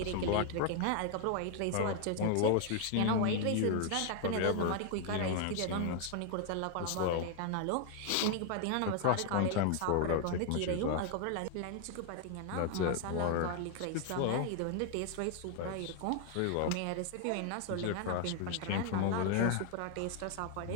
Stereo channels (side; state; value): both; different; correlation 0.00